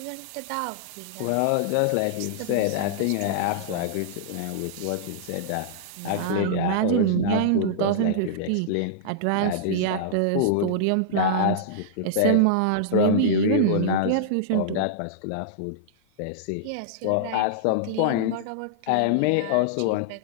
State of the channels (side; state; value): both; different; correlation -0.02